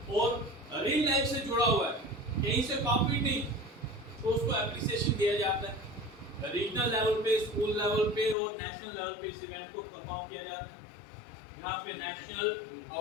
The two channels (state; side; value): drops out; right; at 8.3 s